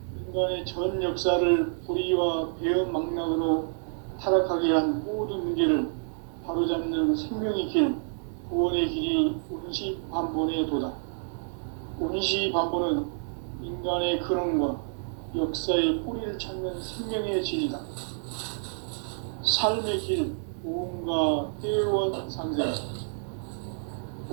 인간의 전 역사를 불의와 배응 망락으로 타락하게 한 모든 문제를 바로잡는 생명의 길, 구원의 길이 운시반본의 도다. 운시반본은 인간의 근원과 역사의 뿌리를 찾는 생명의 진이다. 삶의 길, 모험과 회원 상생.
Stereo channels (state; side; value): silent; left; digital silence